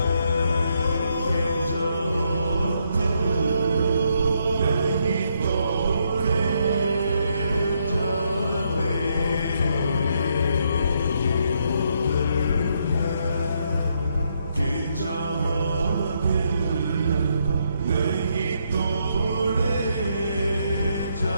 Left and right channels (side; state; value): both; inverted; correlation -0.76